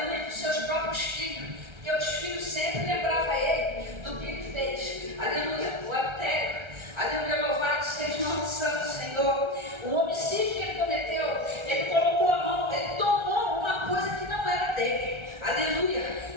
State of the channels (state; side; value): late; left; 1.3 ms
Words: dos seus próprios filhos, porque os filhos sempre lembravam ele do que ele fez, aleluia, o adultério, aleluia, louvado seja o nome santo do Senhor. O homicídio que ele cometeu, ele colocou a mão, ele tomou uma coisa que não era dele,